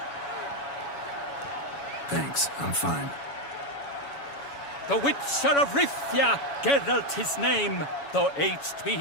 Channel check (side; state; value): right; late; 7.1 ms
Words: Thanks, I'm fine. The Witcher of Rivia, Geralt his name. Though aged be